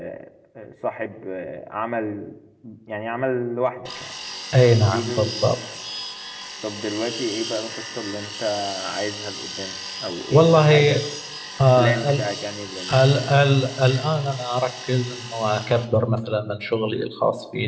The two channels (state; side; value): identical; both; correlation 1.00